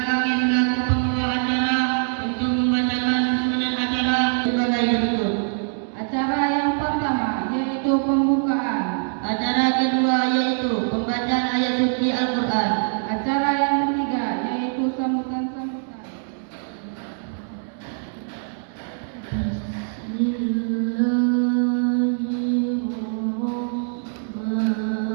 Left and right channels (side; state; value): left; silent; digital silence